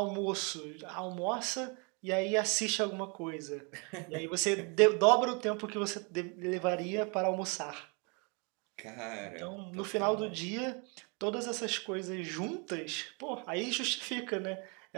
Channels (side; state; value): left; quieter; 33.4 dB